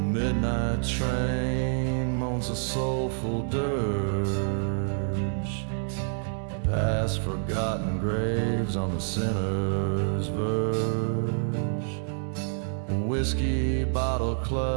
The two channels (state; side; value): silent; left; digital silence